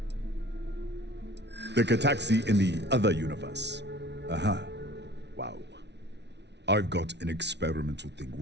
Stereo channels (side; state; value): left; late; 0.50 ms